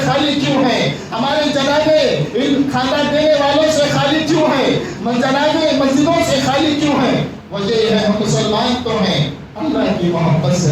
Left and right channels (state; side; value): identical; both; correlation 1.00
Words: خالی کیوں ہیں؟ ہمارے جنازے ان کھانا دینے والوں سے خالی کیوں ہیں؟ جنازے مسجدوں سے خالی کیوں ہیں؟ وجہ یہ ہے ہم مسلمان تو ہیں، اللہ کی محبت